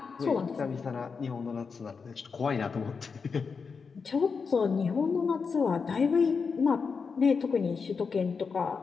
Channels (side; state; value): right; quieter; 5.3 dB